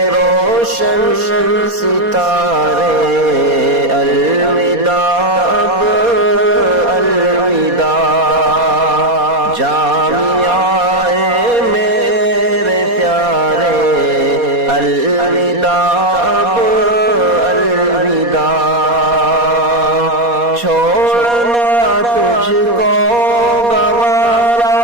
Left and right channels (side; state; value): left; late; 4.2 ms